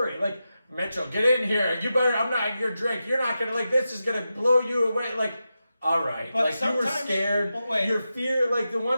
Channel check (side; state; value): both; inverted; correlation -0.90